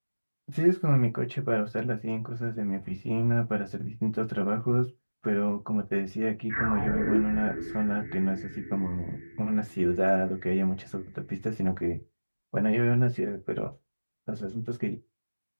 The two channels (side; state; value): both; inverted; correlation -1.00